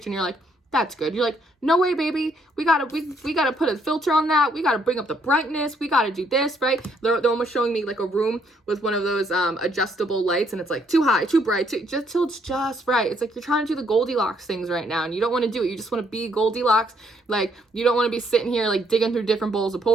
and you're like, that's good. You're like, no way, baby. We gotta put a filter on that. We gotta bring up the brightness. We gotta do this, right? They're almost showing me like a room with one of those adjustable lights, and it's like too high, too bright, just till it's just right. It's like you're trying to do the Goldilocks things right now, and you don't want to do it. You just want to be Goldilocks. Like, you don't want to be sitting here like digging through different bowls of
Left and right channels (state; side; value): normal; both; correlation 0.70